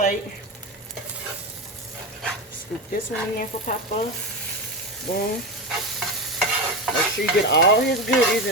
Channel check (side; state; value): both; normal; correlation 0.19